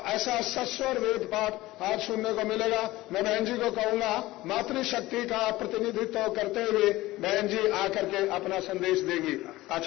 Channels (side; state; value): right; quieter; 18.0 dB